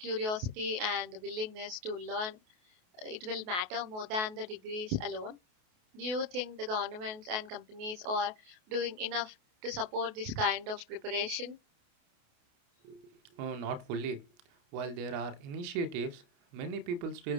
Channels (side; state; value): left; late; 28 ms